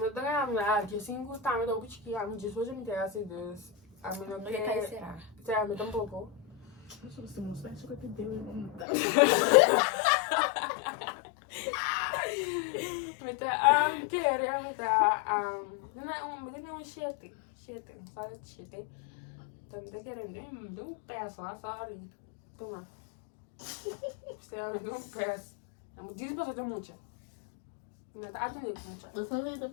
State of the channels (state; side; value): drops out; right; at 8.8 s